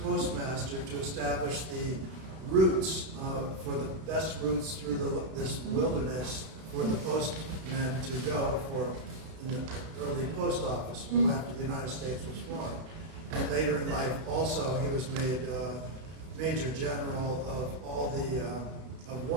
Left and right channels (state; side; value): late; left; 32 ms